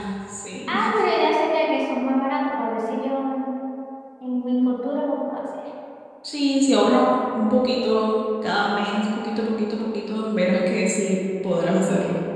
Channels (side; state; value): both; identical; correlation 1.00